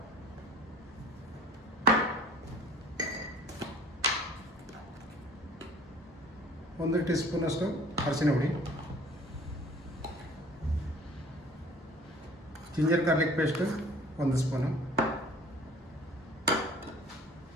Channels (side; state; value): both; normal; correlation 0.50